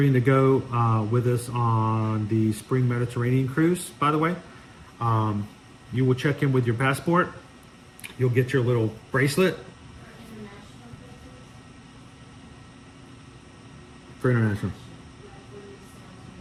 to go with us on the Spring Mediterranean cruise, by the way, you will check in with your passport. You'll get your little bracelet. For international.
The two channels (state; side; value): identical; both; correlation 1.00